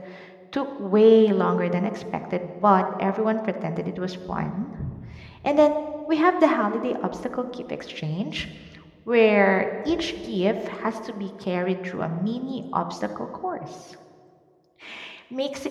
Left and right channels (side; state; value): both; identical; correlation 1.00